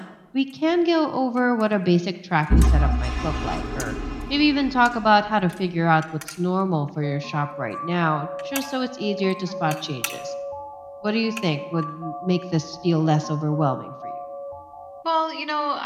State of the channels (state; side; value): identical; both; correlation 1.00